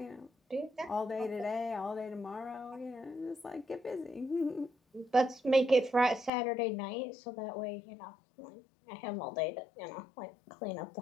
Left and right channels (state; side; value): drops out; right; at 6.3 s